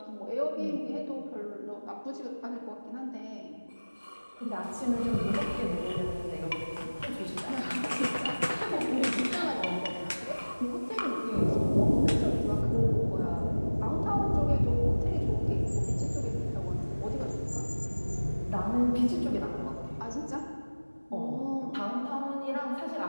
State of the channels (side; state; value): both; inverted; correlation -1.00